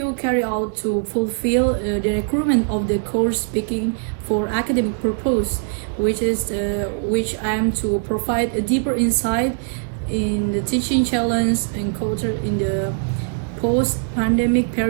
carried out to fulfill the requirement of the course speaking for academic purpose, which I am to provide a deeper insight in the teaching challenge and culture in the post-pandemic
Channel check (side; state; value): left; silent; digital silence